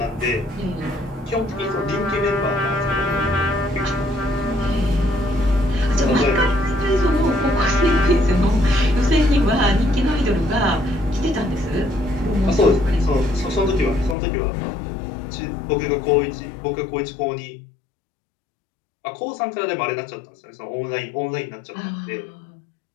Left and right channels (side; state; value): right; drops out; at 14.2 s